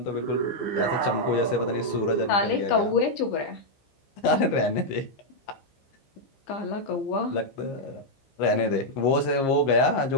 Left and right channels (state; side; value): late; right; 15 ms